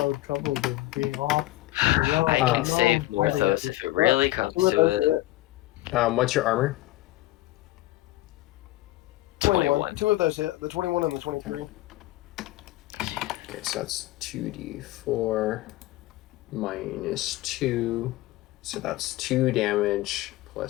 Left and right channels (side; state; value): right; quieter; 17.4 dB